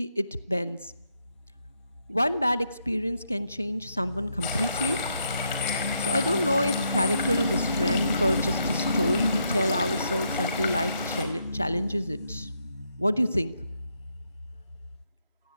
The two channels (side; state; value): both; inverted; correlation -0.77